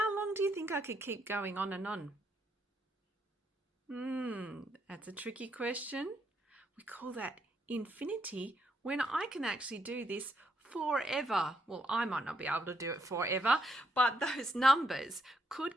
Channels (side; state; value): both; normal; correlation 0.76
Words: long do you think I could keep going on and on? That's a tricky question. We call that infinity, when I can actually do this forever. Well, I might not be able to do it forever, but those numbers